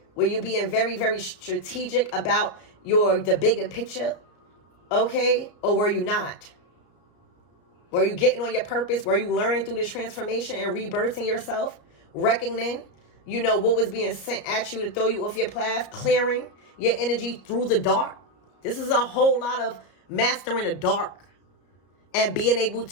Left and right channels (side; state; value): right; late; 33 ms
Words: Were you being very, very strategic about the bigger picture? Okay. Or were you not? Were you getting on your purpose? Were you learning through this transformation and rebirthing yourself? Reckoning, what was being sent at you to throw you off your path, clearing your energy through the dark. This is a whole lot of mastering the dark and being able